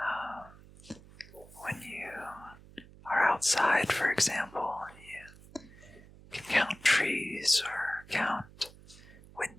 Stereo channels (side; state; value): right; noise; hum, 21 dB below the sound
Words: when you are outside, for example, you can count trees or count